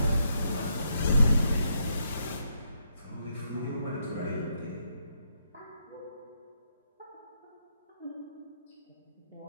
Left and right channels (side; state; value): both; inverted; correlation -0.78